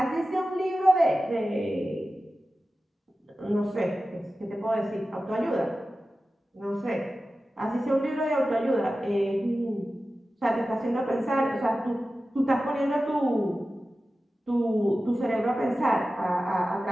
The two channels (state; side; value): normal; both; correlation 0.94